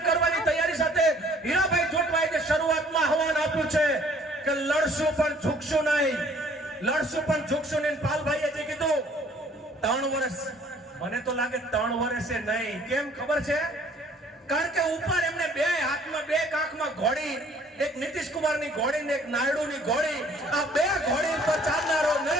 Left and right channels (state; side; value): normal; both; correlation 0.58